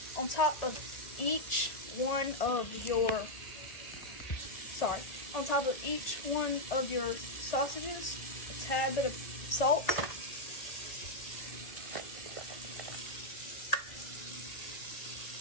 On top of each one of your sausages, a tad bit of salt.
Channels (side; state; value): right; late; 1.8 ms